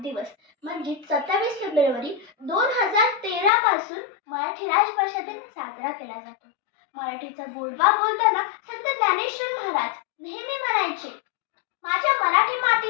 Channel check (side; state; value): right; drops out; at 3.5 s